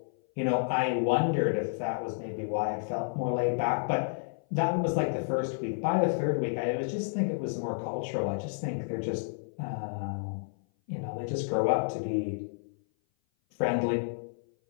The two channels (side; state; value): right; silent; 56 dB below the other